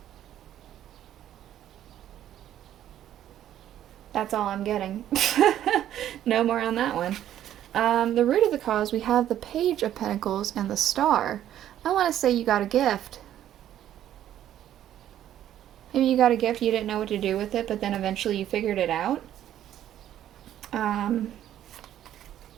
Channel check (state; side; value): quieter; left; 11.5 dB